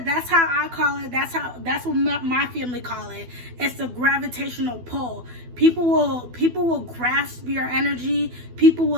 how I call it. That's what my family call it. It's the gravitational pull. People will grasp your energy. People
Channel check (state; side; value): late; left; 12 ms